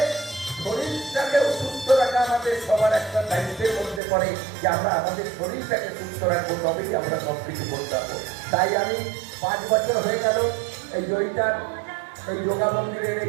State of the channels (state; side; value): drops out; left; at 4.0 s